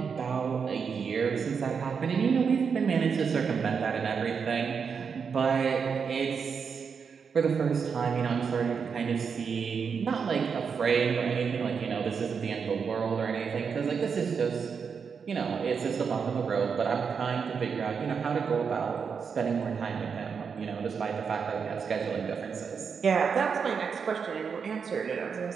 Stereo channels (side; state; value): left; quieter; 6.1 dB